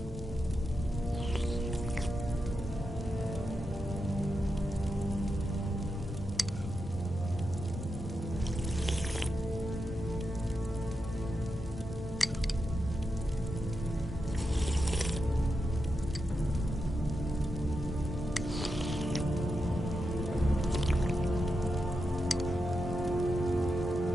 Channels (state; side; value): normal; both; correlation 0.87